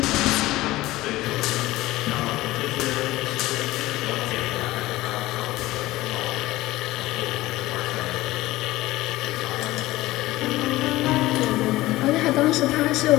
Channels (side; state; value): right; quieter; 17.8 dB